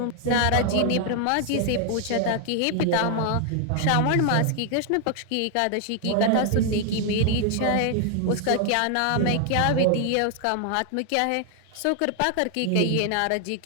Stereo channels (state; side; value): different; both; correlation 0.00